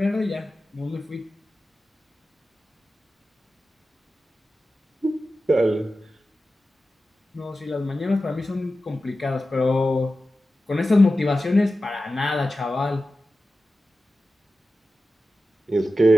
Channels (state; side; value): normal; both; correlation 0.93